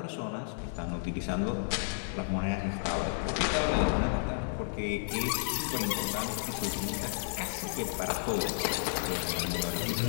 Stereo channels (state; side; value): silent; right; digital silence